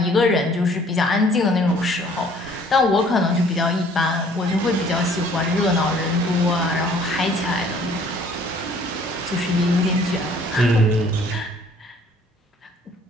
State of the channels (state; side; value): normal; both; correlation 0.57